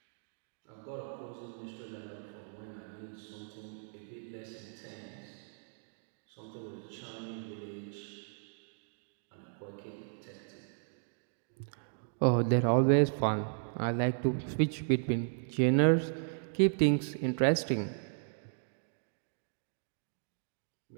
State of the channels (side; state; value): left; silent; digital silence